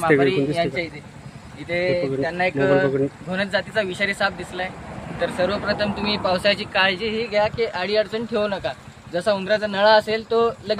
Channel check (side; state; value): both; identical; correlation 1.00